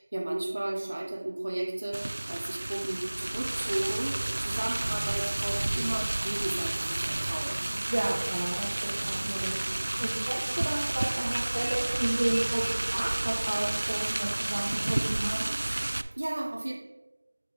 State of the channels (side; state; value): both; inverted; correlation -1.00